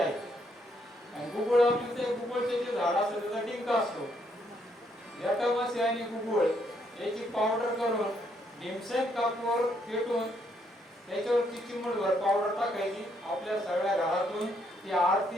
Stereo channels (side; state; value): both; normal; correlation 0.73